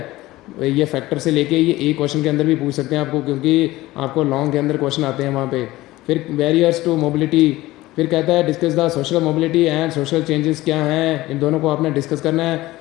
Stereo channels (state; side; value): quieter; right; 17.8 dB